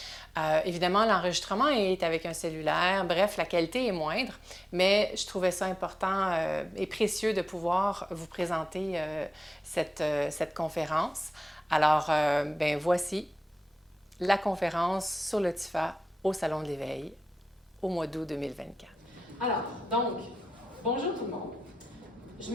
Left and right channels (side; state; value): both; normal; correlation 0.94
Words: Évidemment, l'enregistrement est avec un cellulaire, bref, la qualité est moindre, mais je trouvais ça important et précieux de pouvoir vous présenter cette conférence. Alors, voici la conférence sur le TIFA au Salon de l'Éveil au mois d'août 2024. Alors, donc, bonjour tout le monde. Je